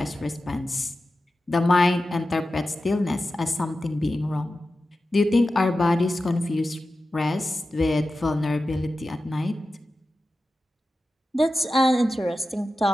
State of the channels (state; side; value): normal; both; correlation 0.93